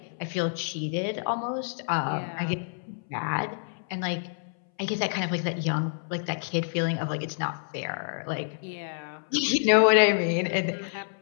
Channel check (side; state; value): right; silent; 59 dB below the other